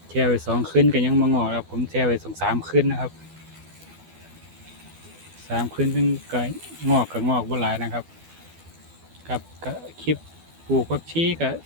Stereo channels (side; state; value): left; late; 12 ms